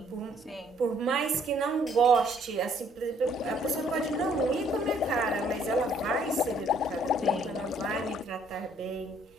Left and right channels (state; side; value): normal; both; correlation 0.64